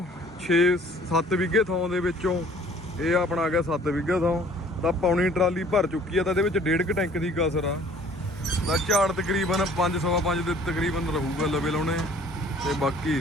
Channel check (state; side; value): normal; both; correlation 0.54